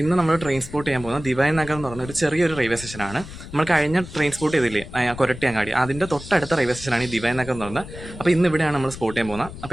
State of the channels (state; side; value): noise; left; rumble, 13 dB below the sound